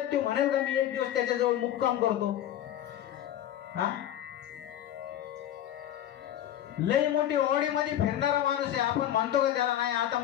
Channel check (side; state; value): right; quieter; 11.5 dB